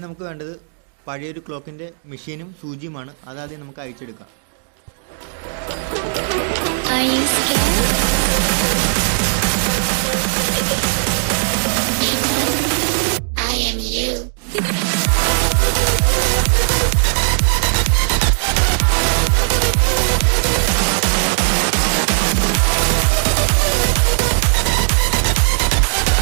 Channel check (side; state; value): left; silent; digital silence